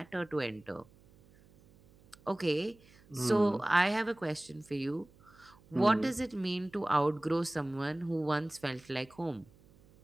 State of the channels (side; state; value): right; noise; hum, 27 dB below the sound